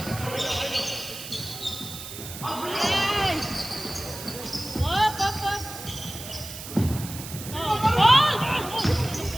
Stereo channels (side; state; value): right; noise; hiss, 11 dB below the sound